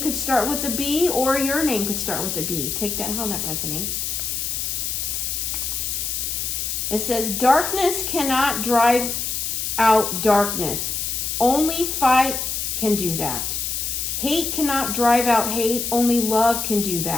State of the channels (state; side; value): noise; left; hiss, 2 dB below the sound